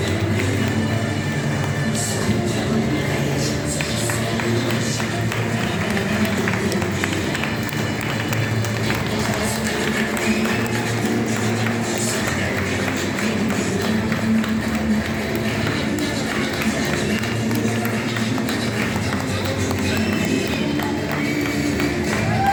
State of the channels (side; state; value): both; identical; correlation 1.00